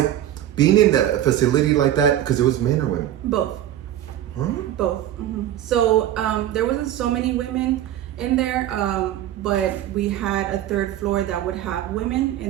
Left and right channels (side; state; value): left; quieter; 12.1 dB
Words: being in a facility like that, because it was men or women? Both. Huh? Both. So there wasn't so many women in there, but we had a third floor that would have women,